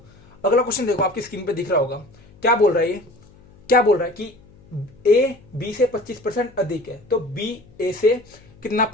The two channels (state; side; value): noise; left; hum, 26 dB below the sound